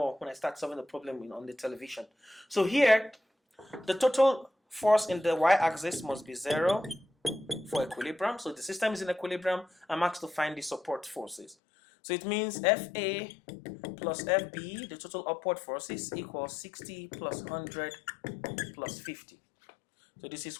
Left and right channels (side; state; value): right; drops out; at 11.6 s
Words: when I start solving the problem on the television. So here, the total force in the y-axis must be 0 for equilibrium. So the system is in equilibrium. I'm asked to find the support forces. So it means FA plus FB, the total upward forces, equals 60 plus 100 plus 50. So this is